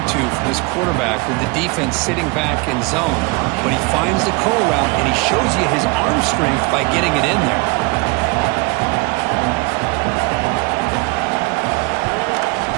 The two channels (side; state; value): left; quieter; 26.8 dB